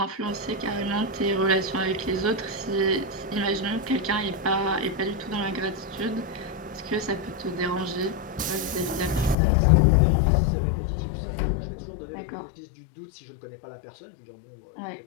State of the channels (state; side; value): drops out; right; at 9.3 s